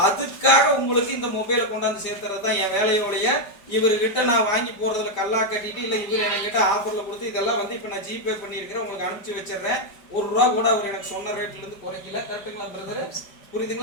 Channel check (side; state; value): right; late; 5.0 ms